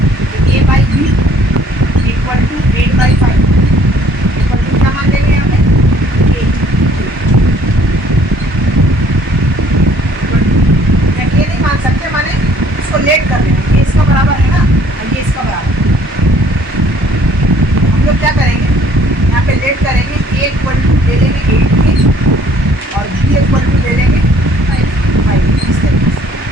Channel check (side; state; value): both; normal; correlation 0.59